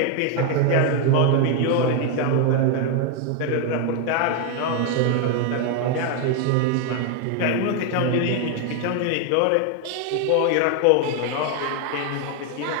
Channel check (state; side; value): different; both; correlation 0.01